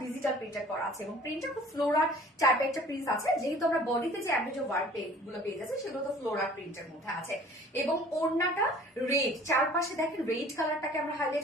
ডিজিটাল প্রিন্টার করা আছে এবং প্রিন্টটা খুব ফ্লোরার টাইপের একটা প্রিন্ট আছে, যেহেতু আমরা বডিতে যে অ্যাভারেজ ওয়ার্ক গুলো পেয়ে যাচ্ছে সেগুলো তো ফ্লোরার প্রিন্টের মধ্যে আছে। এবং ওড়নাটা রেড, চারপাশে দেখেন রেড কালারটাকে আমরা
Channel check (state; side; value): normal; both; correlation 0.50